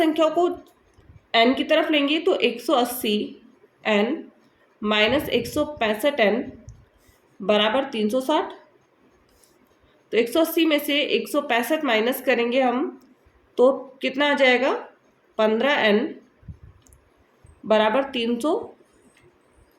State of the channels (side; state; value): both; identical; correlation 1.00